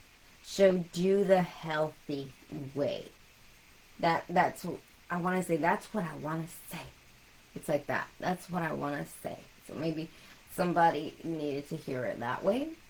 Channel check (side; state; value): both; identical; correlation 1.00